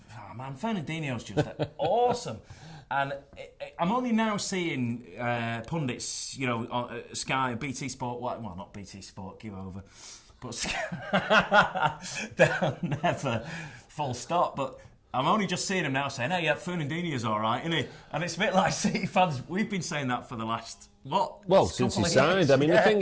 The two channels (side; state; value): both; identical; correlation 1.00